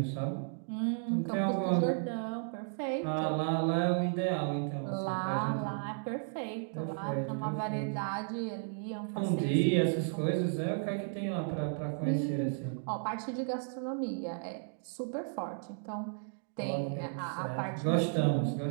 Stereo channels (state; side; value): silent; left; digital silence